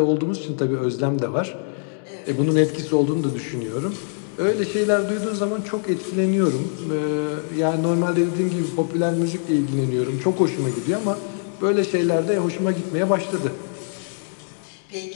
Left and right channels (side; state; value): right; silent; digital silence